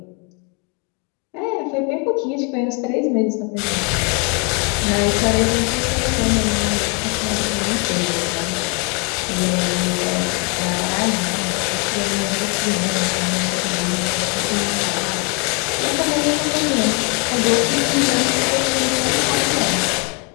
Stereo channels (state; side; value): quieter; right; 33.3 dB